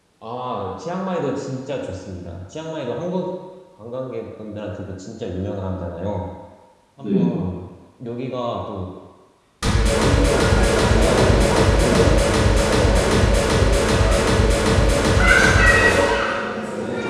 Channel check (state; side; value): identical; both; correlation 1.00